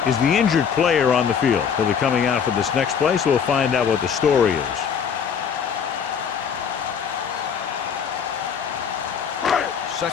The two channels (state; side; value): quieter; right; 7.1 dB